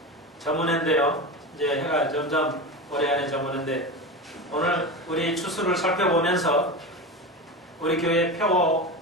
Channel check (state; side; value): normal; both; correlation 0.24